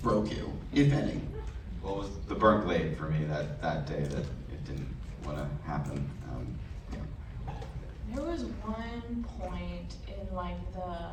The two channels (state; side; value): identical; both; correlation 1.00